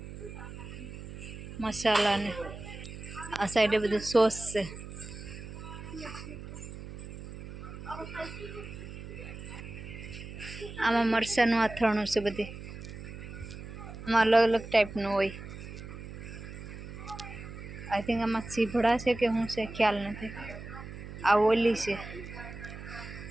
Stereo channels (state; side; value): noise; right; hum, 11 dB below the sound